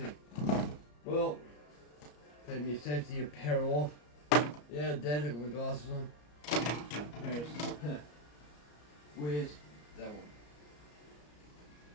Well, take my safety apparel off. Yeah, Dad, I've got my glasses on. There's, where's that one?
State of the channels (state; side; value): late; right; 34 ms